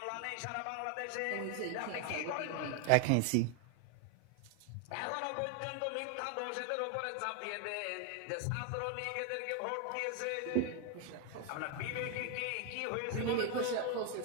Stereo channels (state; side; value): different; both; correlation 0.01